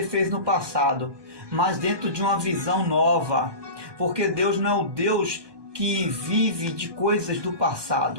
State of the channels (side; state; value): left; late; 1.2 ms